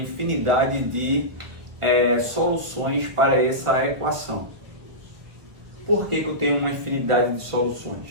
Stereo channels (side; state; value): left; late; 1.2 ms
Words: de soluções para essa equação. Por que eu tenho uma infinidade de